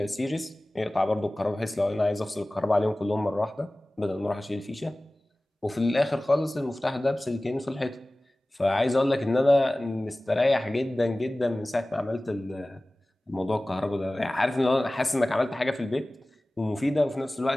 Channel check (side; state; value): both; normal; correlation 0.98